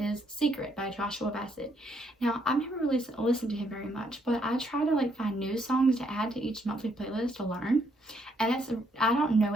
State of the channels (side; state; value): both; normal; correlation 0.72